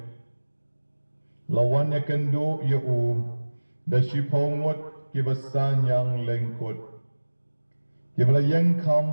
Lawan ya kendo ya da shipongwat kibasan yang lengkut. Kibala yang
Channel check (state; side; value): inverted; both; correlation -1.00